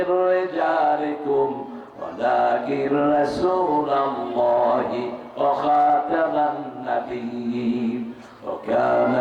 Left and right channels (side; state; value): both; identical; correlation 1.00